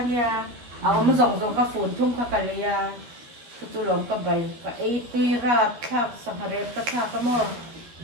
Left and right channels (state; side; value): late; left; 12 ms